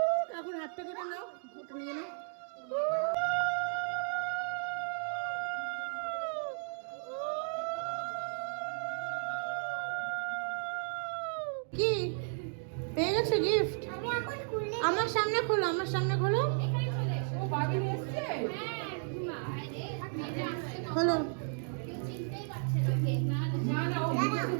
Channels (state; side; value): silent; left; 55 dB below the other